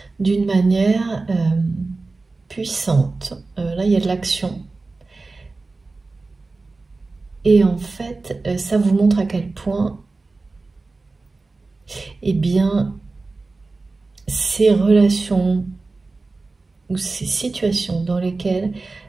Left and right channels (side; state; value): left; quieter; 3.6 dB